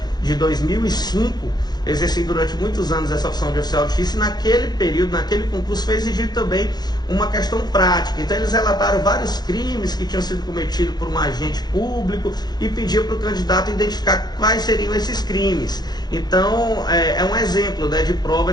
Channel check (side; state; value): right; late; 0.19 ms